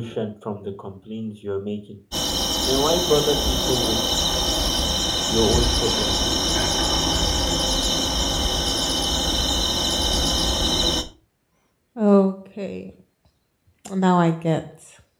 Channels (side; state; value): both; identical; correlation 1.00